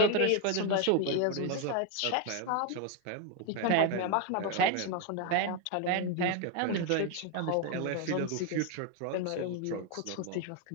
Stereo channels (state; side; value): different; both; correlation 0.01